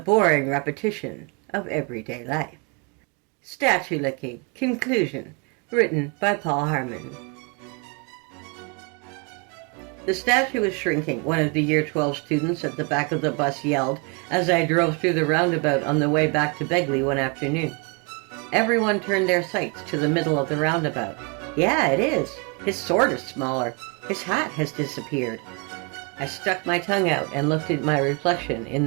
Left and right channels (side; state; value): left; quieter; 31.8 dB